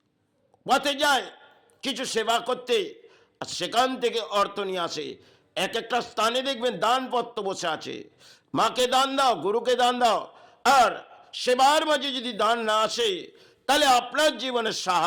পথে যায় কিছু সেবা করতে, আর সেখান থেকে অর্থ নিয়ে আসে। এক একটা স্থানে দেখবেন দানপত্র বসে আছে, মাকে দান দাও, গুরুকে দান দাও। আর সেবার মাঝে যদি দান না আসে তাহলে আপনার জীবনে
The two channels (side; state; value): both; identical; correlation 1.00